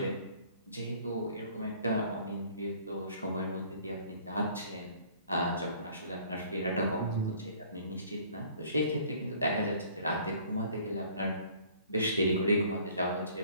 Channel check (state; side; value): inverted; both; correlation -0.55